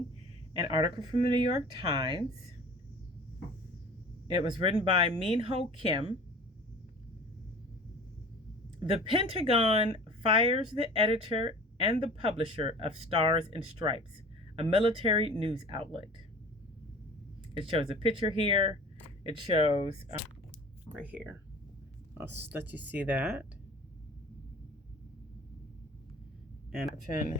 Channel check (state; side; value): normal; both; correlation 0.42